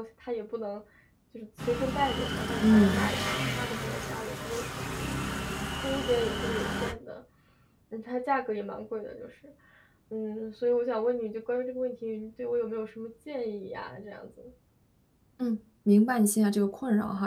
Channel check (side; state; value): both; identical; correlation 1.00